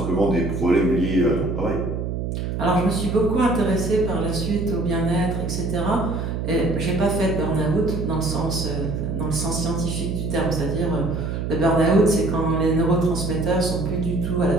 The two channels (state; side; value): noise; right; hum, 3 dB below the sound